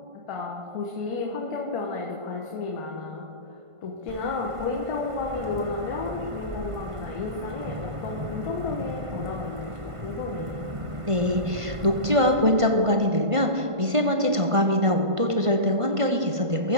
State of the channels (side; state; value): left; late; 1.5 ms